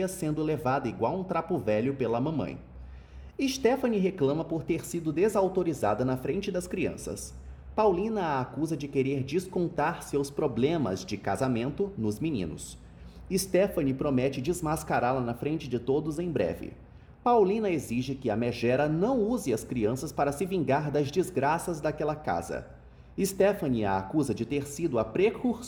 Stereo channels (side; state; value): both; identical; correlation 1.00